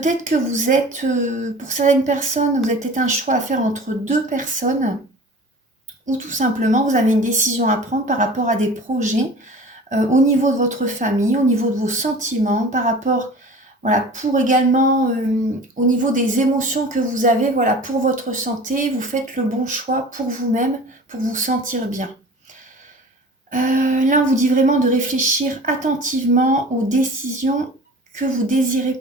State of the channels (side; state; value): both; normal; correlation 0.41